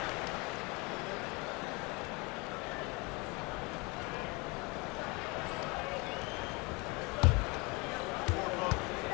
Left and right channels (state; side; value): quieter; right; 27.6 dB